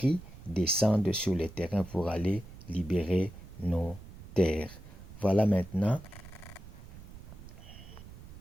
descendent sur le terrain pour aller libérer nos terres. Voilà maintenant,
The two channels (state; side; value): noise; right; rumble, 16 dB below the sound